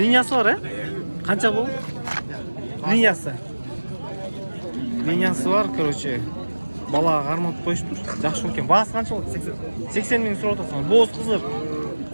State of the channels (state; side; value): inverted; both; correlation -1.00